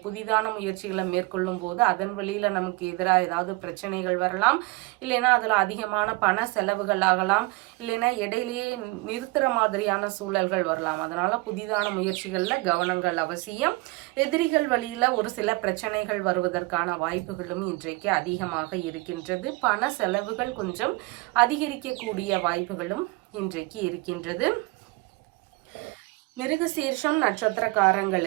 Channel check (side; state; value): left; quieter; 23.7 dB